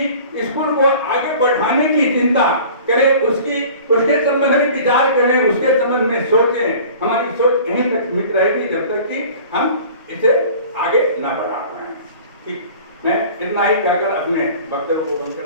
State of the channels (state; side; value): inverted; both; correlation -0.44